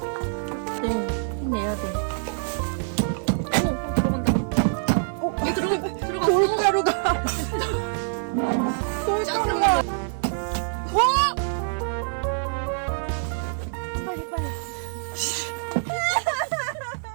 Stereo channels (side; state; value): left; silent; 58 dB below the other